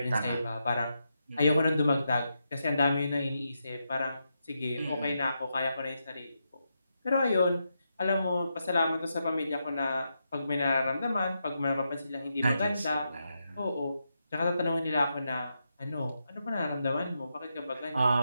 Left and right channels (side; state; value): both; inverted; correlation -0.84